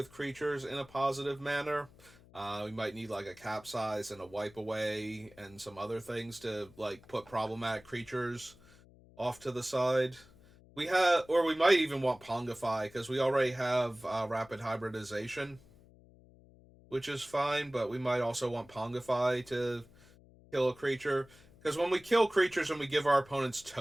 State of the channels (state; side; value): noise; left; hum, 25 dB below the sound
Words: creatures in a positive manner. We might need like a capsize and a wipe away and some other things to like put problematic creatures off to the side. We have, or we might even want Pongify because we already have rapid hybridization, which is fine. But we might also want Pongify to kill a creature because when we kill creatures and we give our opponents